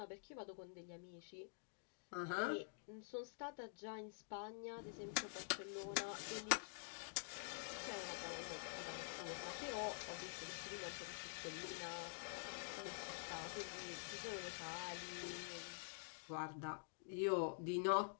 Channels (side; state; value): right; silent; digital silence